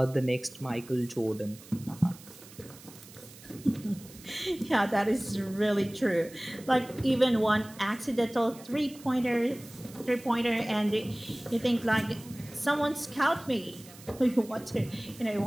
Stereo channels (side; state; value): right; noise; hiss, 20 dB below the sound